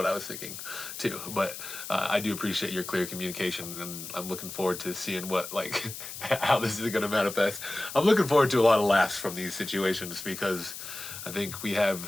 I was thinking too. But I do appreciate your clear communication, and I'm looking forward to seeing what like how this is going to manifest. I'm looking forward to a lot of laughs from these situations because I think we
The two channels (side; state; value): left; noise; hiss, 10 dB below the sound